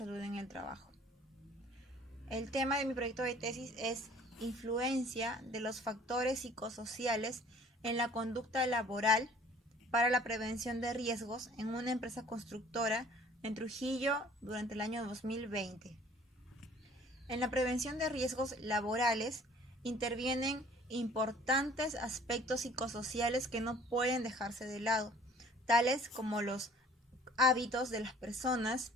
en el Trabajo. El tema de mi proyecto de tesis es influencia de los factores psicosociales en la conducta laboral para la prevención de riesgos en una empresa constructora en Trujillo durante el año 2020. En la prevención de riesgos laborales intervienen importantes aspectos psicosociales que no pueden dejarse de lado, tales como los hábitos de las personas,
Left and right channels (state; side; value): normal; both; correlation 0.52